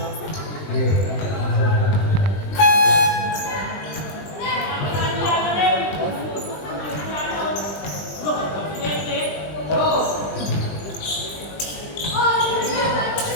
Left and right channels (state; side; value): late; right; 20 ms